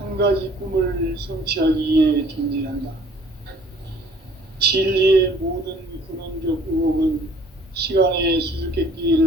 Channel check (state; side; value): normal; both; correlation 0.55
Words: 가지 꿈을 성취하기 위해 존재한다. 진리의 모든 근원적 의혹은 시간의